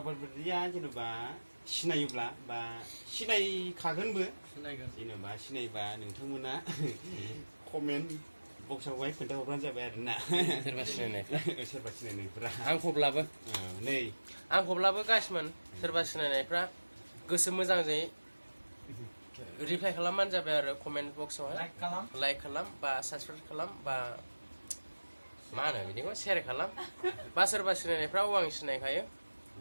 बायदिया जेनेबा सिनायोब्ला बा सिनायखागोनबो जेनेबा सिनायबा नोंथांमोना कमेन्ट बक्सआवहाय खोन्थाहरबानो जाबाय आरोना सोरबा सिनायनायफ्रा आंखौब्लाबो गासिमोन सोरबा सिनायनायफ्रा गोसो मोजांजों रिप्लाइ खालामबानो जाबाय आरो कमेन्ट बक्सआवहाय लाइक खालाम बा साबसक्राइब खालाम बा मा होनो बिदिखौ शेयार खालाम बा सोरबा सिनायनायफ्राव आं सिनायखायो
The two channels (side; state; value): both; inverted; correlation -1.00